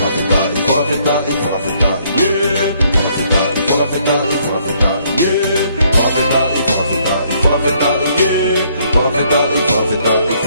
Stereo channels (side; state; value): both; inverted; correlation -0.67